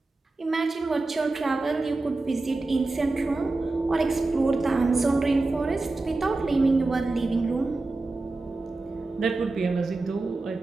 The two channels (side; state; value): left; quieter; 3.3 dB